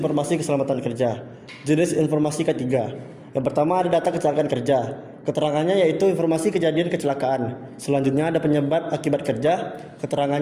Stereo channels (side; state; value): both; identical; correlation 1.00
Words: keselamatan kerja. Jenis informasi ketiga. Yang pertama ada data kecelakaan kerja. Keterangannya yaitu informasi kejadian kecelakaan. Selanjutnya ada penyebab akibat kerja.